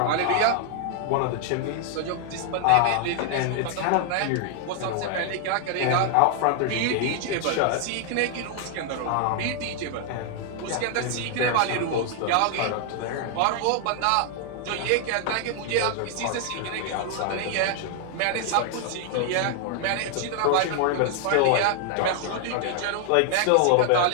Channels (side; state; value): both; different; correlation 0.00